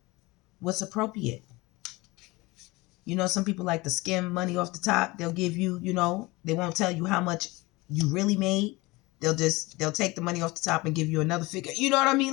what's appropriate. You know, some people like to skim money off the top. They'll give you, you know, they won't tell you how much you really made. They'll take the money off the top and give you another figure. You know what I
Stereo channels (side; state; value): right; quieter; 22.3 dB